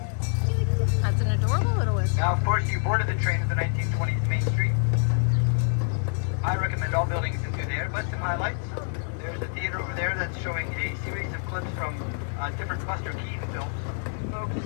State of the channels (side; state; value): right; silent; 58 dB below the other